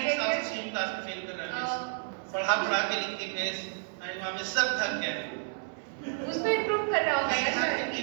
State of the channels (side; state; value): left; silent; digital silence